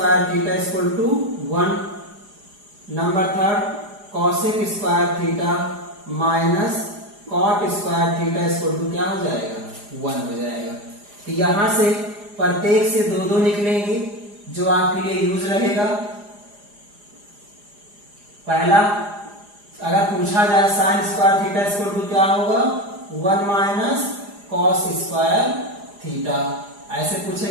theta equal to 1। Number 3 cosec square theta minus cot square theta equal to क्या हो जाएगा, 1 हो जाएगा। तो यहां से प्रत्येक से दो दो निकलेंगे जो आपके लिए यूज रहेगा। पहला अगर पूछा जाए sine square theta equal to क्या होगा, 1 माइनस कॉस स्क्वायर थीटा। ऐसे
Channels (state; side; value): late; left; 4.9 ms